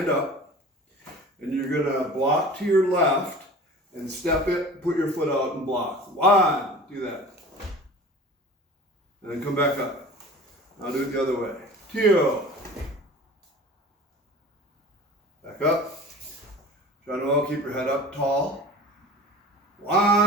up, and you're going to block to your left, and step it, put your foot out and block. 1, do that. And then come back up. Now do it the other way. 2. Back up. Try to keep your head up tall.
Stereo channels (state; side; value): normal; both; correlation 0.40